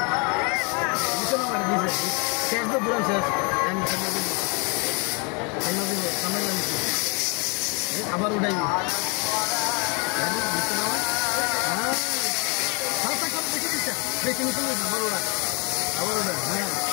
নিচে নামাই দিছে শেষ তো পুরো শেষ আবার উঠাই বেশি নিচে আবার ওরা হ্যাঁ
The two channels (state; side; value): quieter; right; 32.7 dB